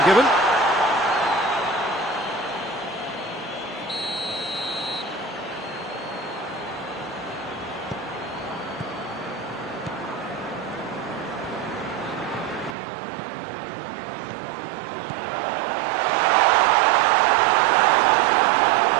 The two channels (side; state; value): left; drops out; at 12.8 s